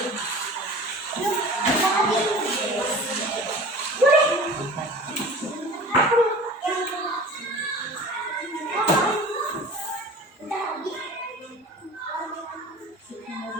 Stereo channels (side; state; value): both; normal; correlation 0.40